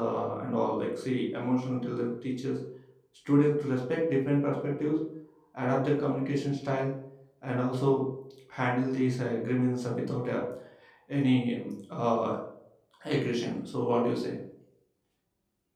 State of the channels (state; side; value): identical; both; correlation 1.00